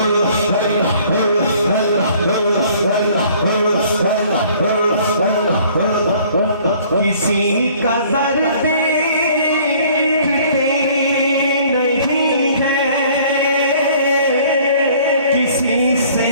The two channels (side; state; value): both; inverted; correlation -0.56